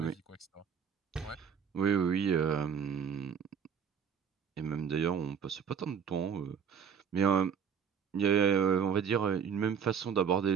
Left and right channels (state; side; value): quieter; left; 7.2 dB